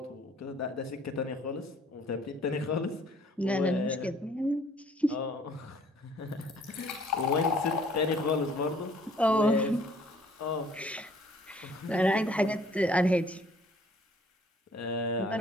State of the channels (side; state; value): both; normal; correlation 0.58